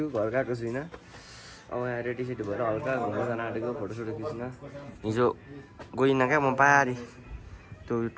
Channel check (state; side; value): identical; both; correlation 1.00